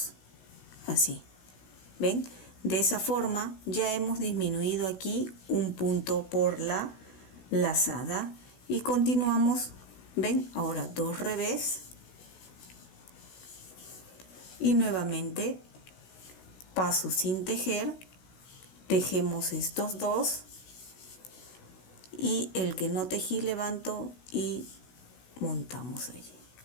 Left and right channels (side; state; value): right; late; 16 ms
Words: así. ¿Ven? De esa forma ya hemos disminuido aquí un punto por la lazada. Y continuamos, ¿ven? Ahora 2 revés. Y nuevamente paso sin tejer, tejemos estos dos. Y el que no tejí levanto y montamos allí.